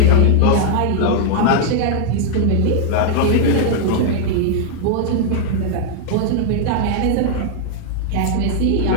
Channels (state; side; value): different; both; correlation -0.01